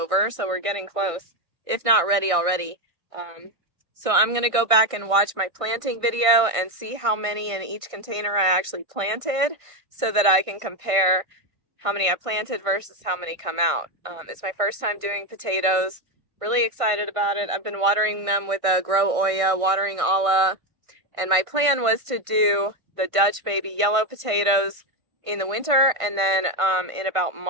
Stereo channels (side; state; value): left; late; 1.6 ms